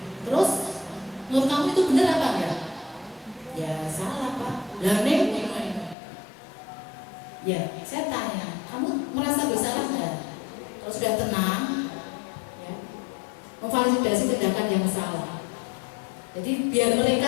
Terus menurut kamu itu benar apa enggak? Ya salah Pak. Lah Neng, ya saya tanya, kamu merasa bersalah nggak? Kalau sudah tenang, ya, memvalidasi tindakan yang salah. Jadi biar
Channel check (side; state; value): right; drops out; at 6.0 s